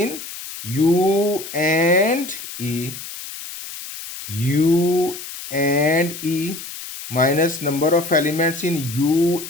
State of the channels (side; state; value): left; noise; hiss, 11 dB below the sound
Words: U and E, you and E minus number of elements in